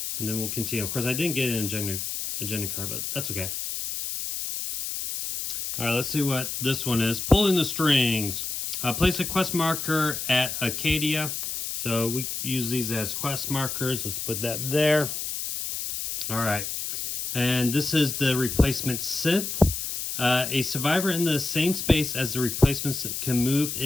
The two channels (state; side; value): noise; left; hiss, 4 dB below the sound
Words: and then we'll continue. Of course, I didn't get an agenda card, but that's okay. All right, let's see what this one is. Pulling the strings. Place a quest marker at Acadia. So we use these as quest markers. Let's put that there. All right. And this is the replacement synth. A survivor in the same space as the replacements can move